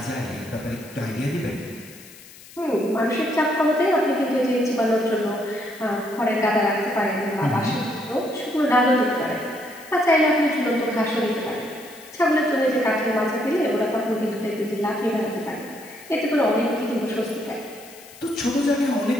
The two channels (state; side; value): noise; left; hiss, 20 dB below the sound